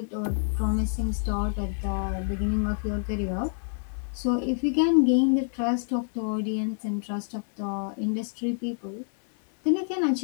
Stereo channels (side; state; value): right; silent; 56 dB below the other